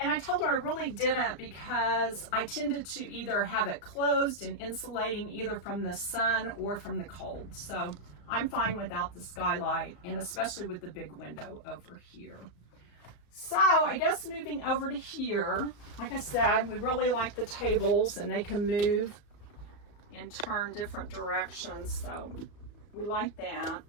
I told her I really didn't because I tended to either have it closed and insulating either from the sun or from the cold. So I'm fine without the skylight, and especially with the big window over here. So I guess moving over to here, like I said, we really like the tables and they can move and turn different directions. So we like that.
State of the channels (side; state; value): right; late; 34 ms